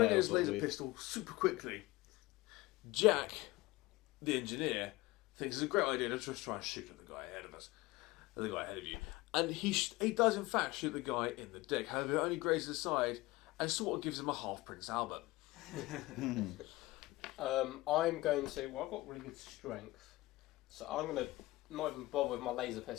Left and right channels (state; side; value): quieter; right; 20.0 dB